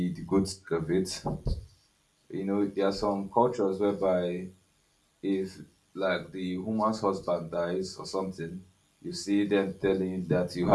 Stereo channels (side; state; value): both; identical; correlation 1.00